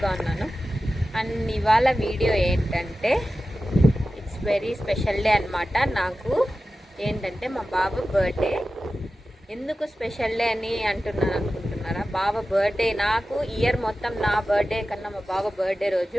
ఉన్నాను. అండ్ ఇవాళ వీడియో ఏంటంటే ఇట్స్ వెరీ స్పెషల్ డే అనమాట. నాకు ఏంటంటే మా బాబు బర్త్డే. ఎందుకు స్పెషల్ డే అని అనుకుంటున్నారా? బాబు బర్త్డే నాకు ఇయర్ మొత్తం నా బర్త్డే కన్నా మా బాబు బర్త్డే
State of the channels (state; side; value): normal; both; correlation 0.94